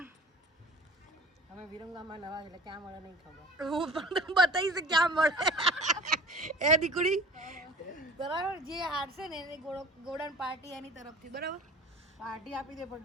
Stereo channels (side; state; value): both; normal; correlation 0.43